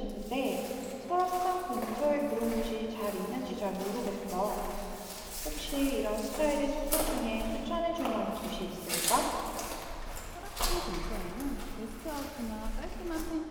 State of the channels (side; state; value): both; identical; correlation 1.00